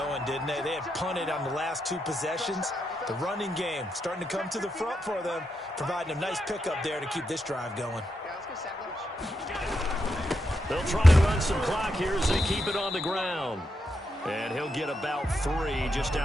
didn't they? They had punted on the last 2 possessions. The running game starting to come to the front for them, providing a nice pickup there to keep this drive going. They'll try and run some clock here as they keep it on the ground. And he'll get about 3 just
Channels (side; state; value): both; normal; correlation 0.83